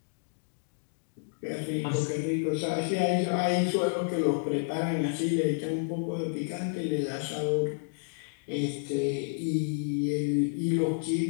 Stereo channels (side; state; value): right; silent; digital silence